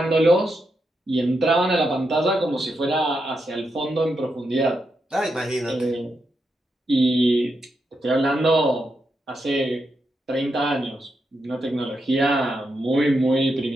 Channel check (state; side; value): normal; both; correlation 0.84